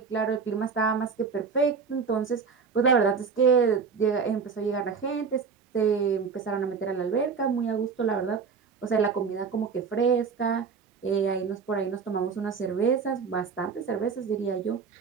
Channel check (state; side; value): quieter; left; 5.5 dB